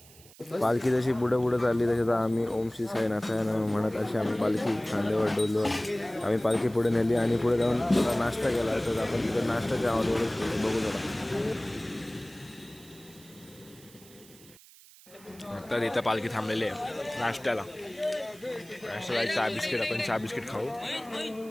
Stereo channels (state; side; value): noise; right; hiss, 23 dB below the sound